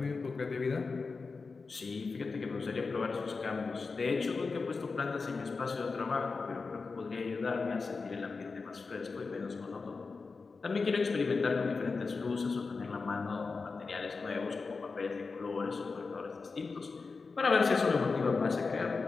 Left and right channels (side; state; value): right; quieter; 4.4 dB